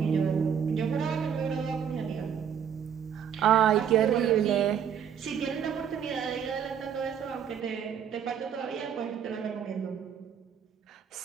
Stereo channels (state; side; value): quieter; left; 8.1 dB